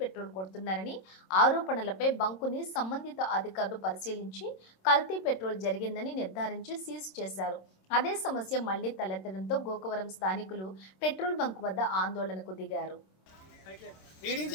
పెట్రోల్ కొడుతున్నారని ఆరోపణలపై బంకుని సంబంధిత అధికారులు పరిశీలించి కల్తీ పెట్రోల్ జరిగిందని నిర్ధారించి సీజ్ చేశారు. అదే సమస్య మళ్లీ తలెత్తడంతో గోకవరం స్థానికులు పెట్రోల్ బంక్ వద్ద ఆందోళనకు దిగారు. రీడింగ్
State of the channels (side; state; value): right; late; 26 ms